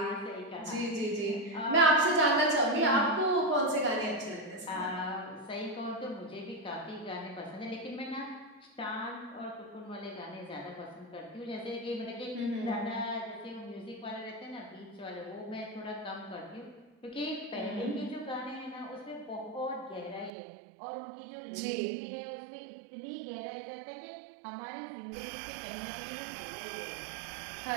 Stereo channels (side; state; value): left; drops out; at 20.3 s